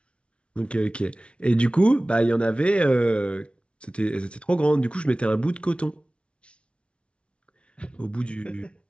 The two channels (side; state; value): right; late; 0.059 ms